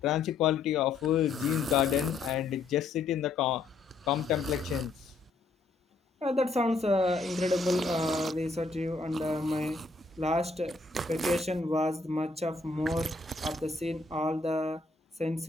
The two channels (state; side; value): quieter; right; 3.7 dB